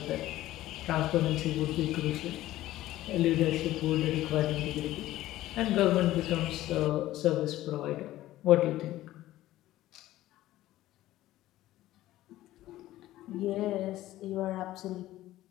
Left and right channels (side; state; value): right; quieter; 15.2 dB